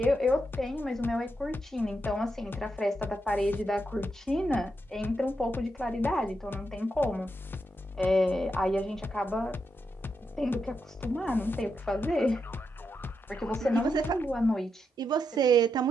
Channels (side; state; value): both; normal; correlation 0.83